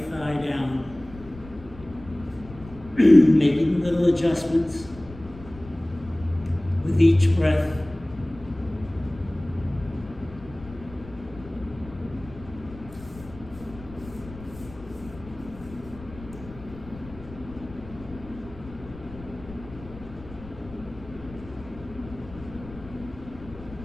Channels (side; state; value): left; noise; rumble, 17 dB below the sound